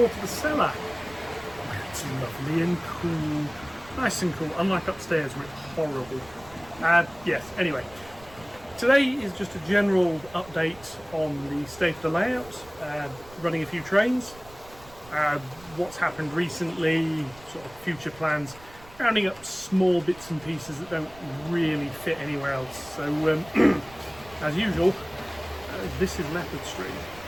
to the cellar. Where it's lovely and cool, nice and cool, unlike upstairs where it's horrible. Yes, anyway, today is just a general update on the state of the layout, running a few trains, what's happened recently, sort of future plans, rounding up small bits and pieces that don't really fit anywhere else. So, as usual, this is Leopard Street.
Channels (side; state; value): right; noise; rumble, 22 dB below the sound